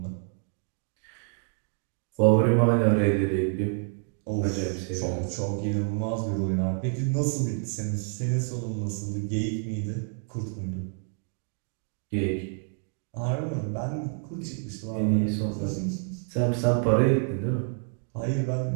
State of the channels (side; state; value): left; silent; 55 dB below the other